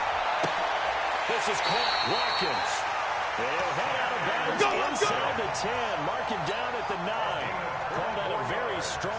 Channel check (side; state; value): both; identical; correlation 1.00